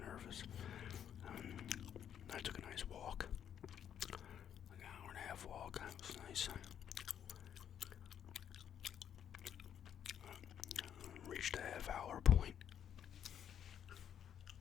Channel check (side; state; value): right; quieter; 9.2 dB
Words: I took a nice walk, like an hour and a half walk. It was nice. Reached a half-hour point.